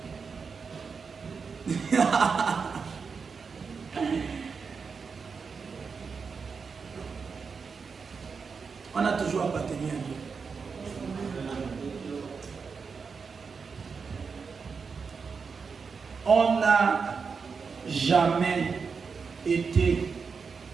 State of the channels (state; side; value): quieter; left; 5.4 dB